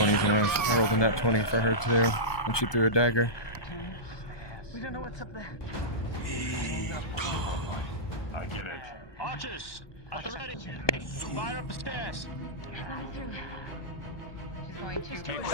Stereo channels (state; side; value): late; right; 1.2 ms